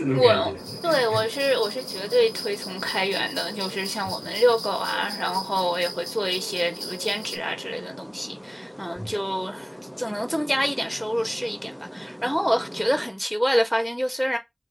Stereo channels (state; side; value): identical; both; correlation 1.00